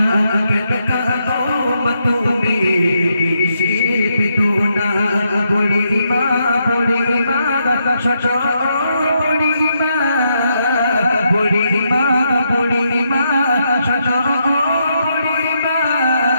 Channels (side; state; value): both; inverted; correlation -0.79